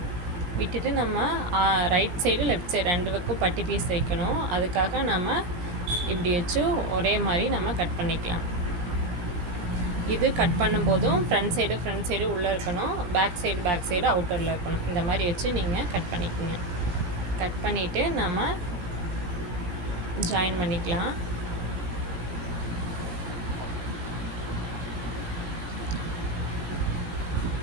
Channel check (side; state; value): left; late; 18 ms